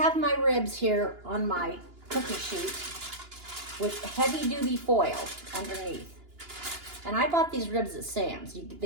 my ribs here on my cookie sheet with heavy duty foil underneath. And I bought these ribs at Sam's.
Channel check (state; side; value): late; left; 2.9 ms